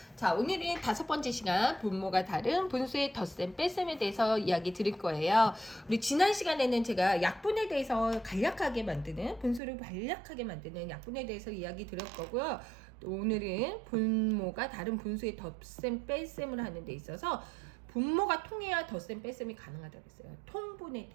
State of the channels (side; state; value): left; drops out; at 9.6 s